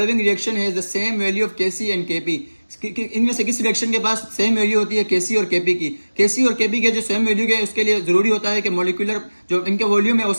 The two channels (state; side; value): inverted; both; correlation -1.00